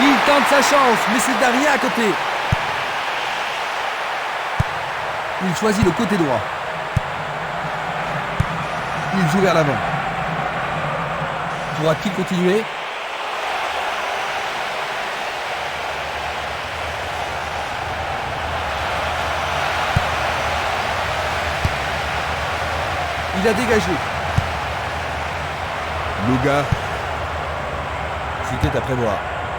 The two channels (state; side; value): identical; both; correlation 1.00